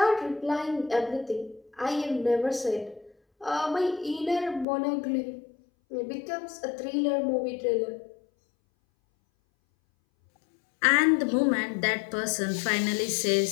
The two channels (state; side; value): drops out; right; at 4.7 s